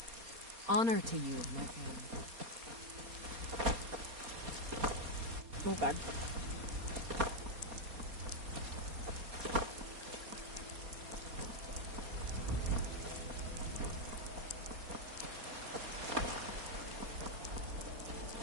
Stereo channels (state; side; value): late; left; 4.2 ms